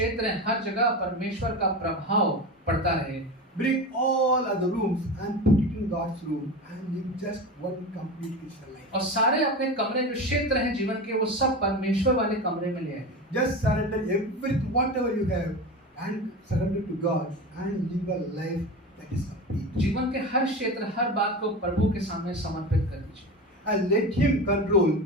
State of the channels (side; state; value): both; normal; correlation 0.26